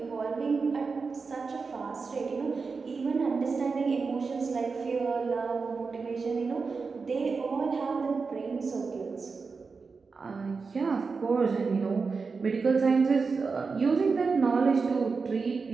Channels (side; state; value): left; quieter; 4.7 dB